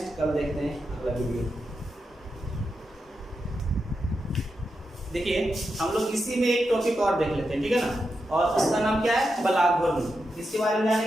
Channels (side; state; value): both; normal; correlation 0.87